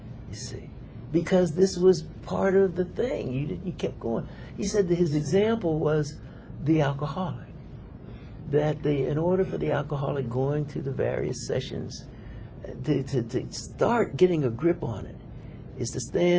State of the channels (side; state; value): both; identical; correlation 1.00